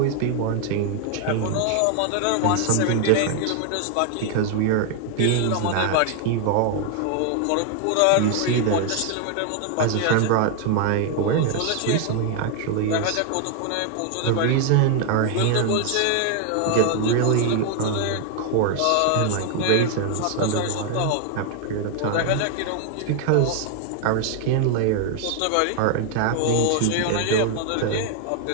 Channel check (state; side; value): different; both; correlation 0.00